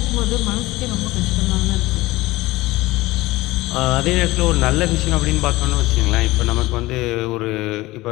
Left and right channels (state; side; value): quieter; right; 19.2 dB